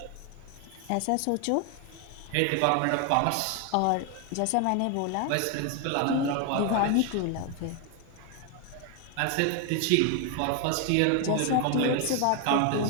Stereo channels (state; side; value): different; both; correlation 0.01